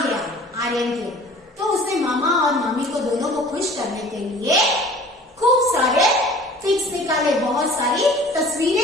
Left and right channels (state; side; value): normal; both; correlation 0.46